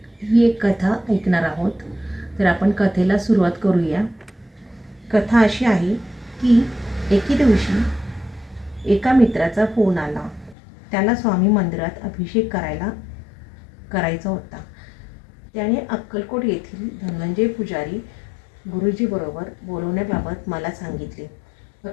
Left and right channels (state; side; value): drops out; right; at 10.6 s